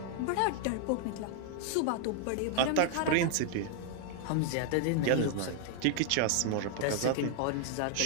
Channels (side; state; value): both; different; correlation 0.00